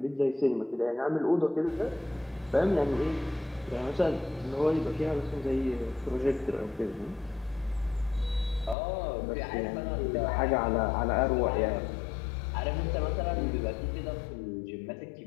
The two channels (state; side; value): drops out; right; at 8.8 s